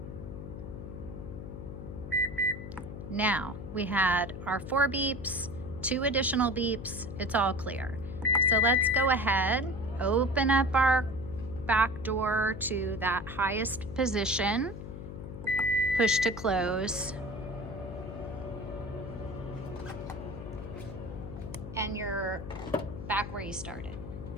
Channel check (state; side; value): noise; left; hum, 9 dB below the sound